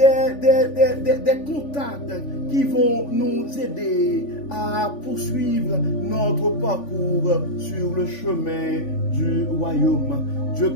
contacts qui vont nous aider à poursuivre notre parcours sur le chemin du royaume. Dieu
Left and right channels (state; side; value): late; right; 3.5 ms